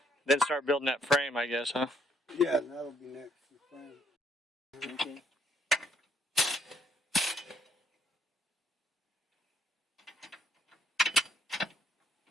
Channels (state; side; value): normal; both; correlation 0.69